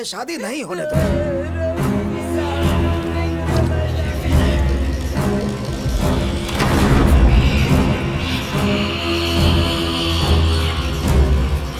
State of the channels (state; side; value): identical; both; correlation 1.00